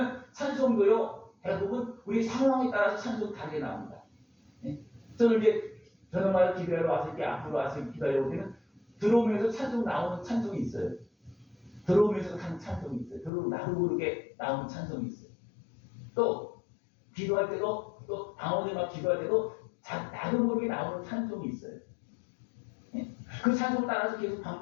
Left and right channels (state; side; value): drops out; right; at 13.3 s